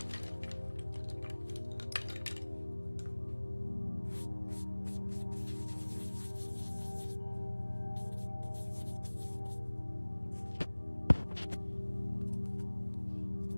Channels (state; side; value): inverted; both; correlation -1.00